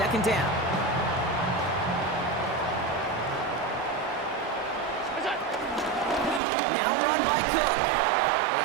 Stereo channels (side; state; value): left; drops out; at 6.4 s